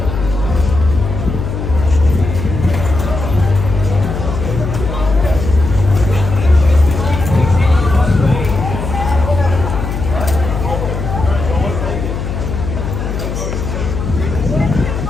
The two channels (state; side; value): noise; left; hum, 5 dB below the sound